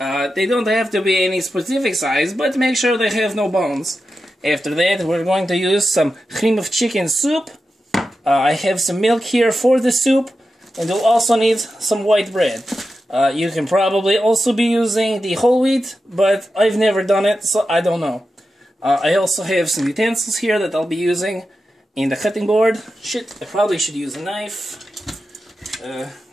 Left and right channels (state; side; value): normal; both; correlation 0.90